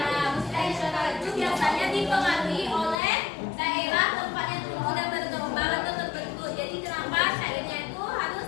Musik tradisional itu biasanya dipengaruhi oleh daerah tempat yang tumbuh dan berkembang atau terbentuk. Jadi kenapa syairnya itu harus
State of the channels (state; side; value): drops out; right; at 3.0 s